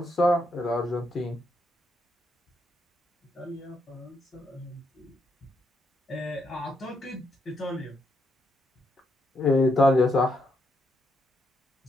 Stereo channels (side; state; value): both; normal; correlation 0.78